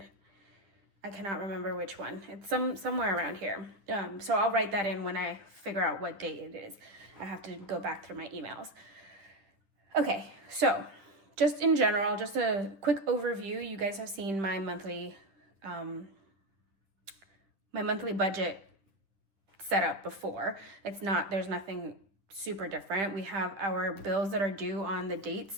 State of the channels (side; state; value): left; late; 10 ms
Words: I cannot remember which one. It's somewhere around here. So I'll write that in when I figure out what date it is. I have to go back through my emails. Okay, so just in general, just a quick overview. You guys have seen my monthly budget set up before. There's nothing super different. We have our bills that are due on the